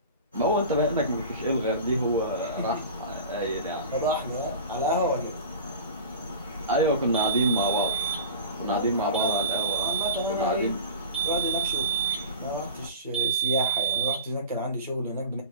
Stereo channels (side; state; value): both; inverted; correlation -0.35